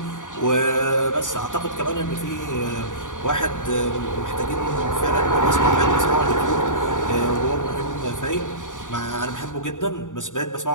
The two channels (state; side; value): late; right; 0.87 ms